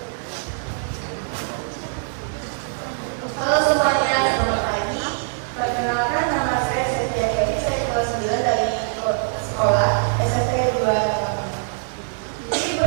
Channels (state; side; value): silent; left; 64 dB below the other